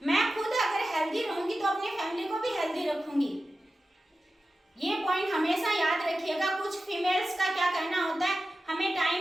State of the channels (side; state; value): both; normal; correlation 0.93